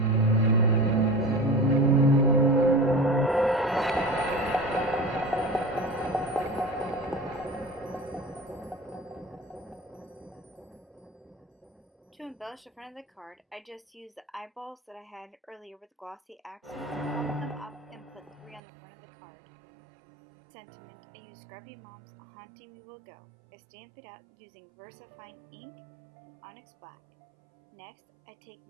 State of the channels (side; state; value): left; drops out; at 18.6 s